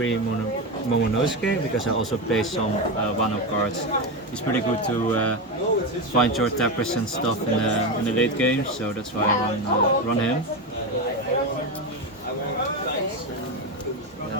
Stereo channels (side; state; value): both; normal; correlation 0.15